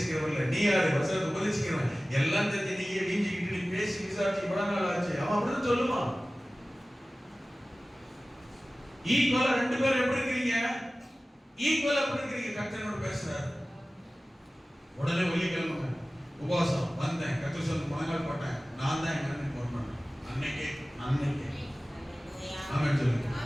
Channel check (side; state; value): both; normal; correlation 0.97